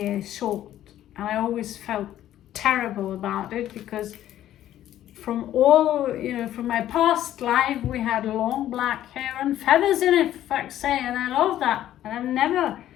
short. And I always felt terrible about it, because from all, you know, from my past life, we had long black hair and feathers in it, for fuck's sake, and I love that. And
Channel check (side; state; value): right; quieter; 12.4 dB